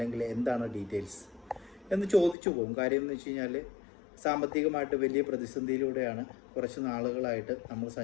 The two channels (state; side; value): drops out; right; at 2.4 s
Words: എന്താണ് ഡീറ്റെയിൽസ് എന്ന് ചോദിച്ചു പോകും. കാര്യം എന്ന് വെച്ച് കഴിഞ്ഞാൽ സാമ്പത്തികമായിട്ട് വലിയ പ്രതിസന്ധിയിലൂടെയാണ് കുറച്ച് നാളുകളായിട്ട് നമ്മൾ